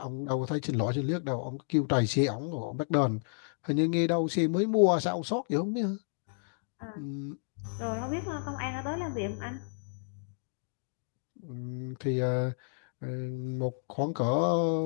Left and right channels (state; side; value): silent; right; digital silence